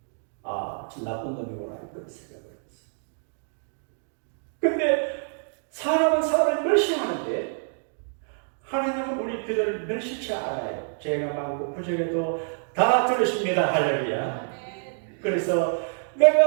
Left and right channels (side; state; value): left; silent; digital silence